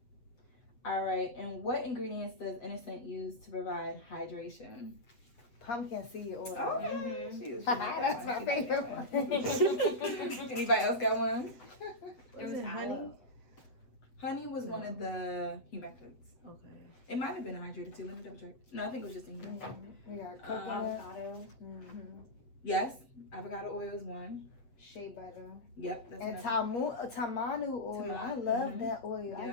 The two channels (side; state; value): right; late; 8.0 ms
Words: All right, and what ingredients does Innersense use to provide hydration? Pumpkin seed oil. Okay. She like That's that my one. favorite one. Anybody else got one? There was honey. Honey was one of the humectants. Okay. It might have been hydrated too. Let me double check. No, I think it was just a humectant. We got coconut. Avocado. Yes, avocado oil is one. Shea butter. Yep, that's And another. tamanu oil. I love that oil. I